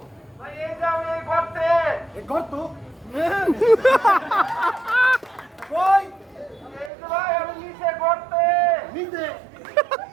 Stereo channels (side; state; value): left; drops out; at 6.9 s